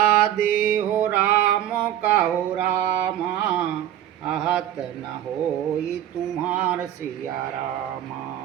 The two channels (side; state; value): left; quieter; 11.6 dB